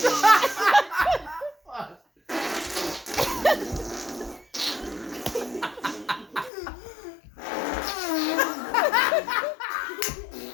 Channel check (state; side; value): drops out; right; at 6.5 s